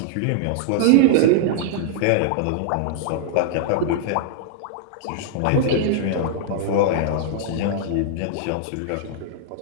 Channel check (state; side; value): different; both; correlation -0.01